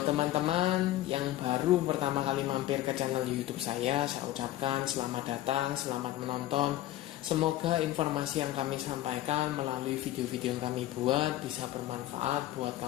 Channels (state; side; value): quieter; right; 14.7 dB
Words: teman-teman yang baru pertama kali mampir ke channel YouTube saya ucapkan selamat datang, selamat menonton. Semoga informasi yang kami sampaikan melalui video-video yang kami buat bisa bermanfaat buat